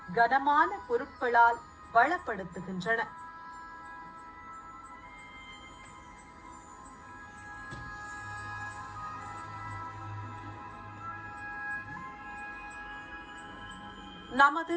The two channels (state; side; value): identical; both; correlation 1.00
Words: கனமான பொருட்களால் வளப்படுத்துகின்றன. நமது